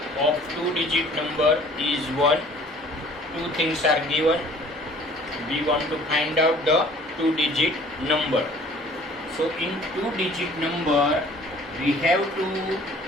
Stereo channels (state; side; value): normal; both; correlation 0.52